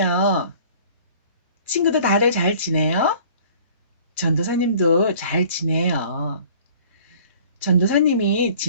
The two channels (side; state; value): both; inverted; correlation -0.50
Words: 친구들 다들 잘 지내요? 전도사님도 잘 지내요. 전도사님이